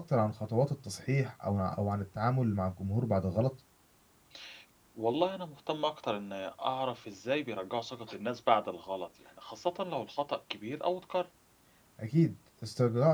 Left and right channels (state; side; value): identical; both; correlation 1.00